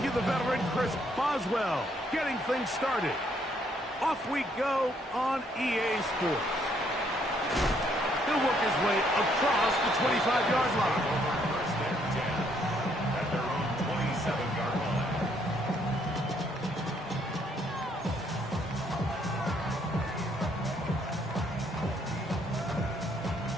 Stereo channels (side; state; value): both; normal; correlation 0.69